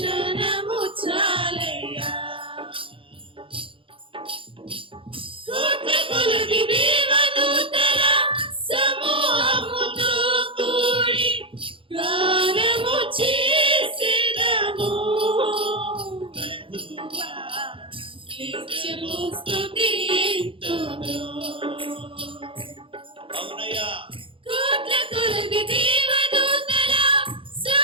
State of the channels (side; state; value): left; late; 0.25 ms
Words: చాలయ్యా కోట్ల కొలది దేవదూతల సమూహముతో కూడి గానము చేసెదము ప్రభువా నిత్యము స్తుతింతును అవునయ్యా కోట్ల కొలది దేవదూతల